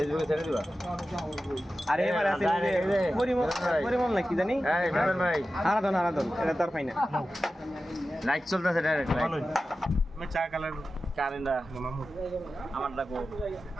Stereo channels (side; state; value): both; normal; correlation 0.94